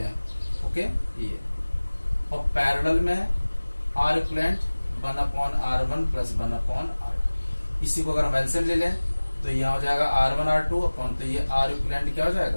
ओके ये, और पैरेलल में are equivalent 1/R1 plus 1/R2। इसी को अगर हम एलसीएम ले लें तो यह हो जाएगा R1 R2 अपॉन, तो ये आर इक्विवेलेंट क्या हो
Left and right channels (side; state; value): both; inverted; correlation -1.00